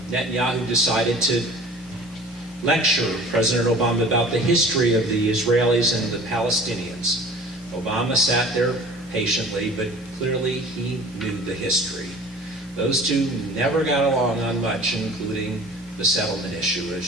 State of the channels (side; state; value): both; normal; correlation 0.45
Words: Netanyahu decided to lecture President Obama about the history of the Israelis and the Palestinians. Obama sat there patiently, but clearly he knew the history. Those two never got along on much, including the settlement issue,